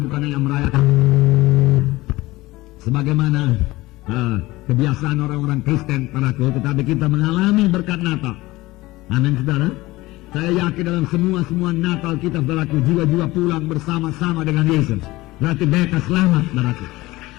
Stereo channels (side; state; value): right; quieter; 19.5 dB